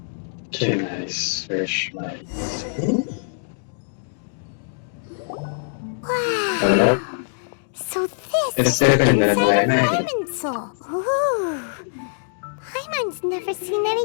Can I search my... Wow. Hello? So this It's is different than what I inside imagined. Irminsul. Ooh. Paimon's never seen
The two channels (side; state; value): right; silent; digital silence